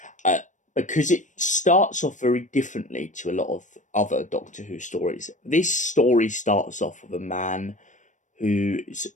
because it starts off very differently to a lot of other Doctor Who stories. This story starts off with a man whose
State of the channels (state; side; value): late; right; 0.36 ms